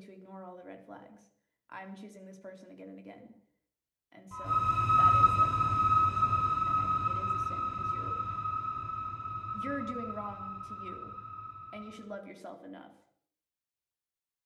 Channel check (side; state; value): both; identical; correlation 1.00